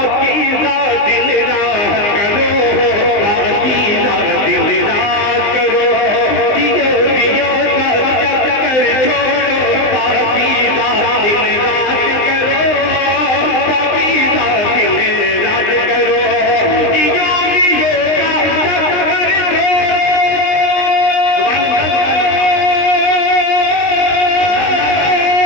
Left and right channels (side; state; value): right; late; 19 ms